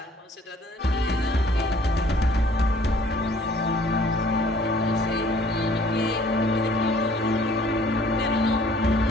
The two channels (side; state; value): both; normal; correlation 0.56